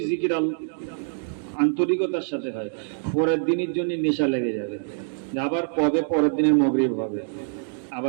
জিকির আন্তরিকতার সাথে হয়, পরের দিনের জন্য নেশা লেগে যাবে, আবার কবে পরের দিনের মাগরিব হবে,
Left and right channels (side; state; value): left; silent; digital silence